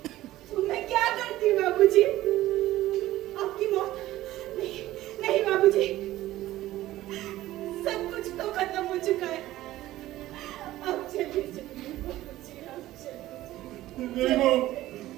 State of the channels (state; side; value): quieter; left; 15.5 dB